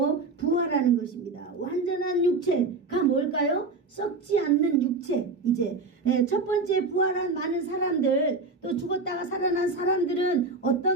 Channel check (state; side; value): quieter; left; 3.7 dB